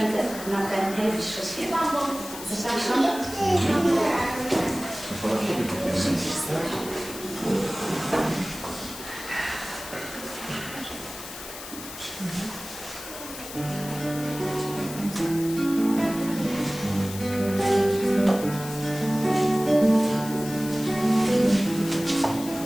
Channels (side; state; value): left; noise; hiss, 12 dB below the sound